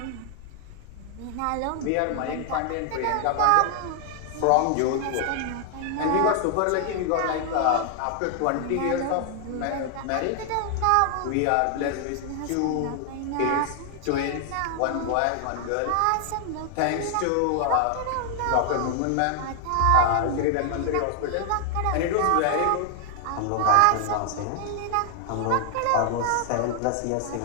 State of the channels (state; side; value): different; both; correlation 0.00